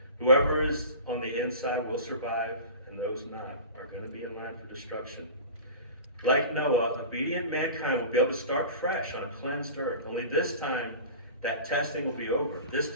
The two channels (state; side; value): inverted; both; correlation -0.36